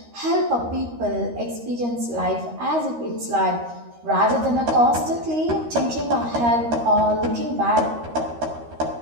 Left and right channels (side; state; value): left; late; 13 ms